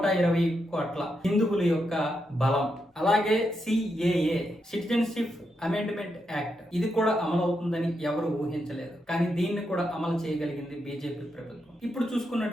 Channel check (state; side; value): normal; both; correlation 0.83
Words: కోట్ల హిందువుల యొక్క బలం. అలాగే సిఏఏ, సిటిజన్షిప్ అమెండ్మెంట్ యాక్ట్, ఇది కూడా అమలు అవుతుందని ఎవరు ఊహించలేదు. కానీ దీన్ని కూడా అమలు చేయగలిగింది బీజేపీ ప్రభుత్వం. ఇప్పుడు